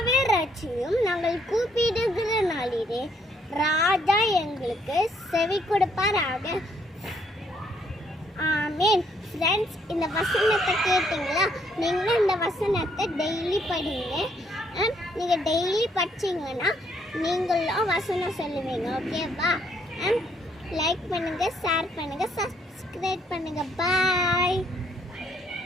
ரட்சியும், நாங்கள் கூப்பிடுகிற நாளிலே ராஜா எங்களுக்கு செவி கொடுப்பாராக. ஆமேன். ஃப்ரெண்ட்ஸ், இந்த வசனத்தை கேட்டீங்களா? நீங்கள் இந்த வசனத்தை டெய்லி படிங்க. நீங்கள் டெய்லி படிச்சிங்கன்னா நீங்களும் வசனம் சொல்லுவீங்க, ஓகேவா? லைக் பண்ணுங்கள், ஷேர் பண்ணுங்கள், சப்ஸ்கிரைப் பண்ணுங்கள். பாய்.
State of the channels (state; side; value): normal; both; correlation 0.69